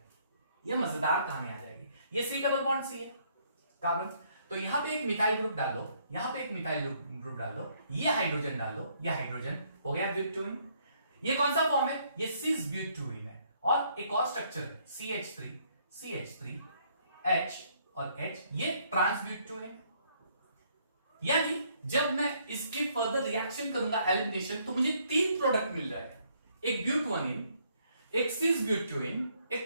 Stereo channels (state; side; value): inverted; both; correlation -0.68